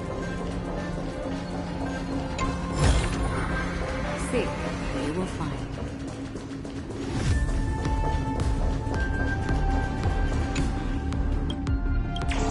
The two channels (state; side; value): identical; both; correlation 1.00